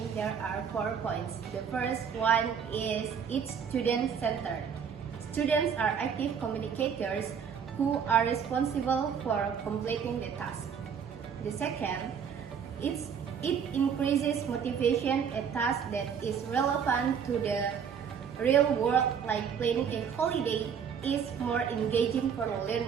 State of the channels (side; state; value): left; quieter; 7.3 dB